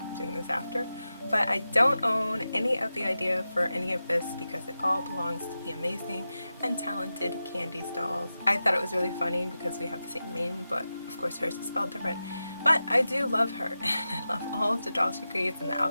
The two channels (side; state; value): both; inverted; correlation -0.93